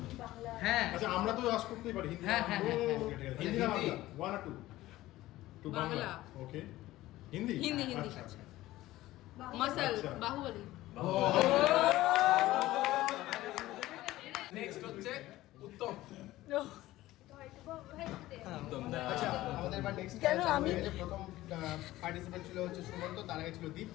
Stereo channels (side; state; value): right; quieter; 16.5 dB